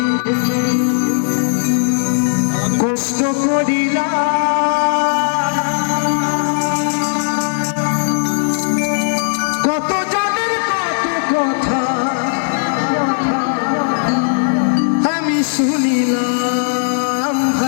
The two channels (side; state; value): right; silent; digital silence